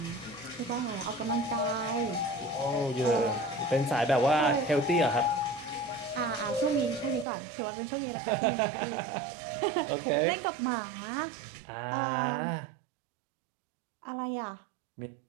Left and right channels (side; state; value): left; drops out; at 7.2 s